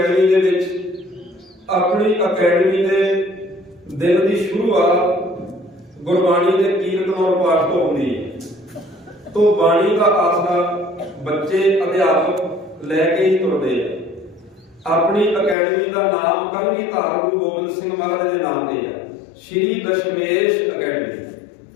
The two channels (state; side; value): drops out; right; at 15.6 s